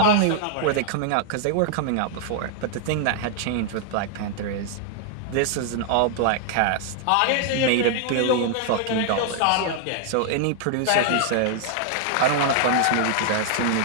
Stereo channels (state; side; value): different; both; correlation 0.00